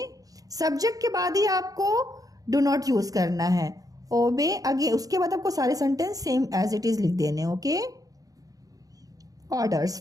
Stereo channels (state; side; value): late; left; 0.17 ms